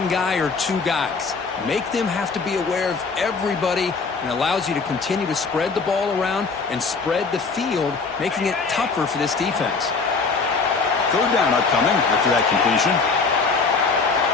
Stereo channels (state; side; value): quieter; right; 4.6 dB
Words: guy or two guys. Make them have to be aware of everybody, and allows you to continue to spread the ball around and spread the field, making it tougher for this defense. Third down upcoming after that completion.